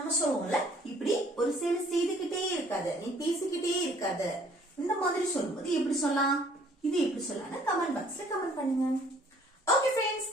சொல்லுவோம்ல இப்படி ஒரு செயல் செய்துகிட்டே இருக்காத, நீ பேசிக்கிட்டே இருக்காத. இந்த மாதிரி சொல்லும்போது எப்படி சொல்லலாம்? இது எப்படி சொல்லலாம்னு கமெண்ட் பாக்ஸ்ல கமெண்ட் பண்ணுங்க. ஓகே ஃப்ரெண்ட்ஸ்,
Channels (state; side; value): normal; both; correlation 0.58